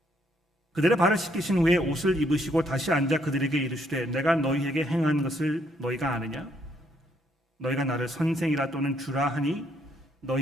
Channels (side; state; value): both; normal; correlation 0.71